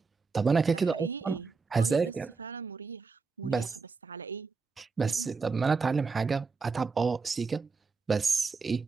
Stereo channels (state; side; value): quieter; left; 4.6 dB